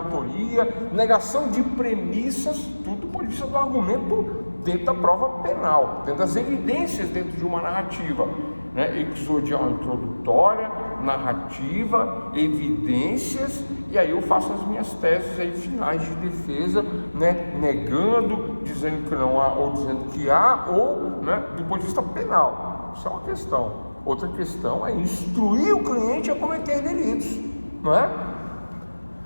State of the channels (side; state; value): both; inverted; correlation -1.00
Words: negação de premissas, tudo do ponto de vista do argumento dentro da prova penal, dentro das evidências dentro de uma narrativa, né? Exodial introdutória, narrativa, evidências, e aí eu faço as minhas teses aí finais de defesa, né? Negando, dizendo que não há ou dizendo que há, ou, né, do ponto de vista penal. Isso é uma questão. Outra questão é instruir o cliente a cometer delitos, não é?